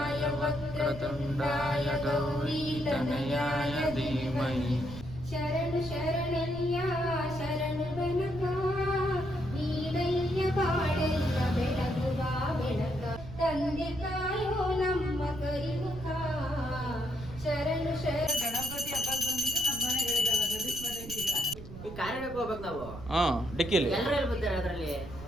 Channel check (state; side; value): noise; right; rumble, 13 dB below the sound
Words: ವಕ್ರತುಂಡಾಯ ಗೌರೀತನಯಾಯ ಧೀಮಹಿ. ಶರಣು ಶರಣಯ್ಯ ಶರಣು ಬೆನಕ ನೀನಯ್ಯ ಬಾಳೆಲ್ಲ ಬೆಳಗುವ ಬೆಳಕ ತಂದೆ ತಾಯೋ ನಮ್ಮ ಕರಿಮುಖ. ಶರಣು ಶರಣ. ಗಣಪತಿ ಹಬ್ಬಕ್ಕೆ ಬಂದಿದ್ದು ನಮ್ಮ ಮನೆಗಳಿಗೆಲ್ಲ ಗದಿಸ್ ಮನೆಗೆ. ಈ ಕಾರ್ಯಕ್ಕೆ ಹೋಗ್ಬೇಕು ನಾವು. ಡಿಕ್ಕಿಲಿ ಎಲ್ಲರೂ ಬರ್ತಾರೆ ಅದರಲ್ಲಿ.